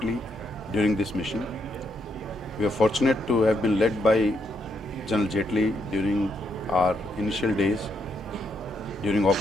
during this mission. We are fortunate to have been led by General Jetley during our initial days, during Op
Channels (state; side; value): normal; both; correlation 0.77